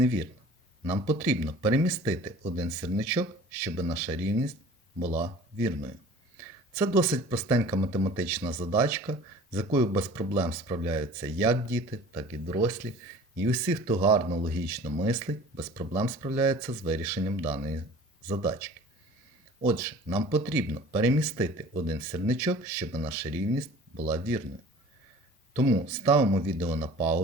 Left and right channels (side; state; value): both; normal; correlation 0.45